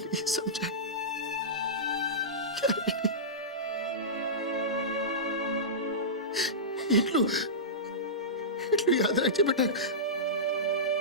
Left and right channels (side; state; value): both; normal; correlation -0.17